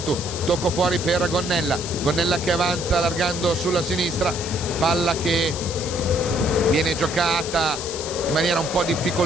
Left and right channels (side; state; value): left; noise; hiss, 8 dB below the sound